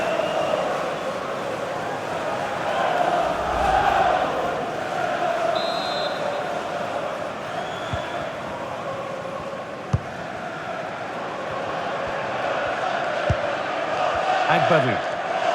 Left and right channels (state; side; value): identical; both; correlation 1.00